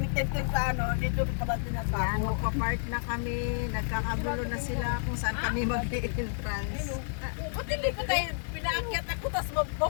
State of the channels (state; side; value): silent; right; digital silence